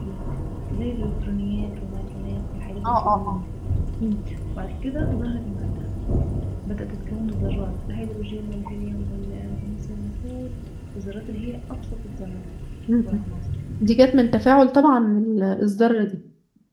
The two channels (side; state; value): both; identical; correlation 1.00